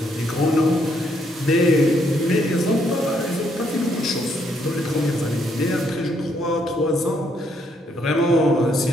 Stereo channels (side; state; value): both; normal; correlation 0.72